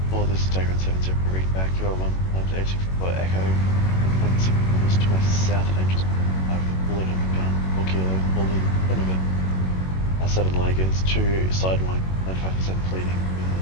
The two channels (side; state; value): right; late; 21 ms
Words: Well, this is Dagger on 70, read back. You are 1 times 864 Echo. 1.6 kilometers to my south at Angels. I've bullet on the gun. 4 kilo, bullet in front of it. 7 Lagers, 2 sidewind, 95% bleeding.